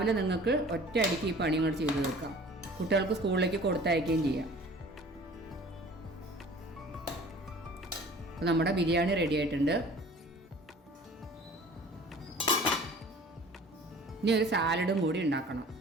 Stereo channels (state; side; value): normal; both; correlation 0.47